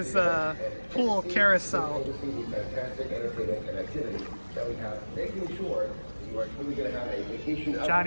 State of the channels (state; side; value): inverted; both; correlation -1.00